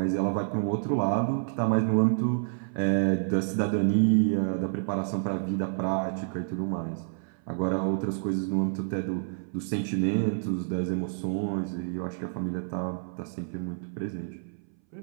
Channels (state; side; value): silent; left; 59 dB below the other